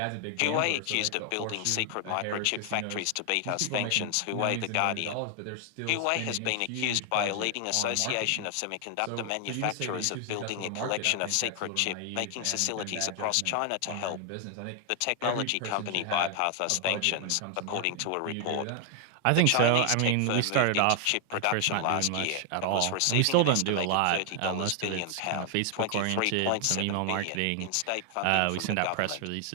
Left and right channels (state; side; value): different; both; correlation 0.00